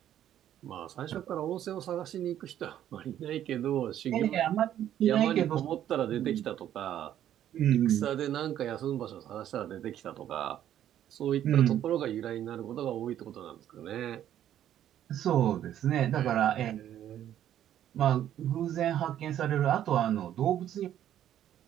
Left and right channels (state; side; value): quieter; left; 11.2 dB